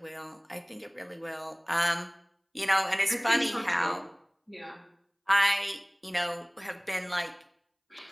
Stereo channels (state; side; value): identical; both; correlation 1.00